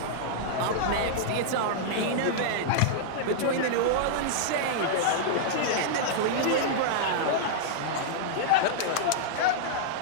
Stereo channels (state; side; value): different; both; correlation -0.02